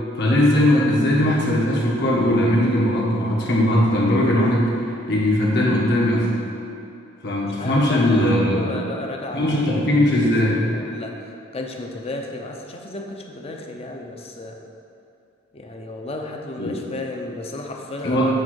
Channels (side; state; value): both; normal; correlation 0.66